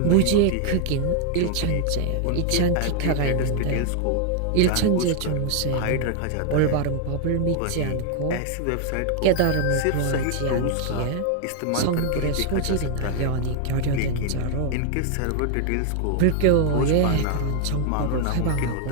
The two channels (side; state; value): both; different; correlation 0.00